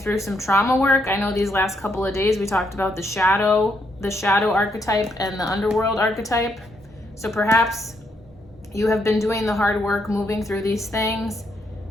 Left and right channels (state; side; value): normal; both; correlation 0.76